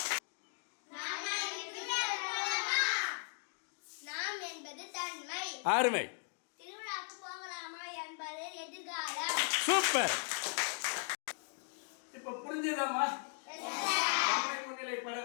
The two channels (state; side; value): silent; right; 53 dB below the other